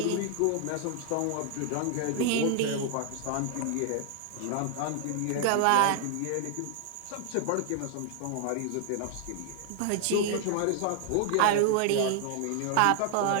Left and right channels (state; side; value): different; both; correlation 0.00